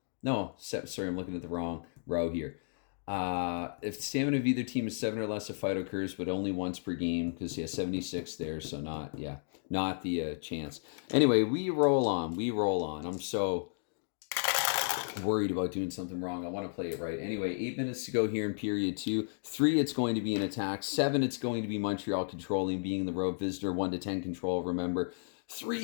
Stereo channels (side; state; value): right; silent; digital silence